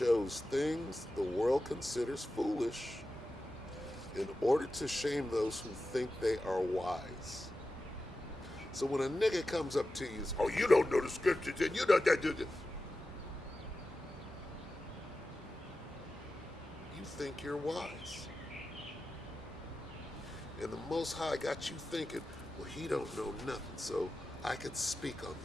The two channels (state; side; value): normal; both; correlation 0.92